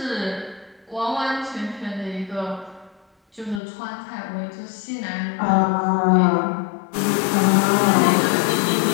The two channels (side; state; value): right; drops out; at 3.6 s